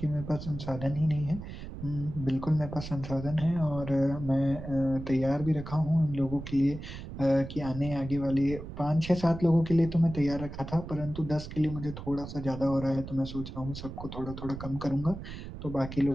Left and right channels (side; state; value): right; noise; rumble, 10 dB below the sound